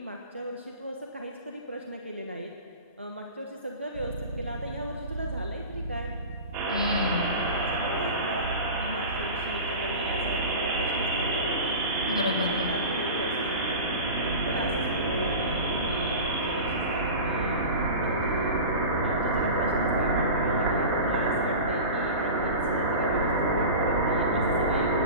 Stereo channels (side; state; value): both; inverted; correlation -0.32